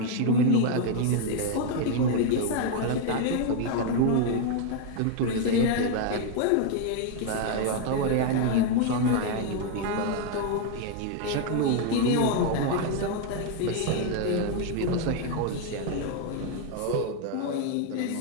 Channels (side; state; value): both; different; correlation 0.00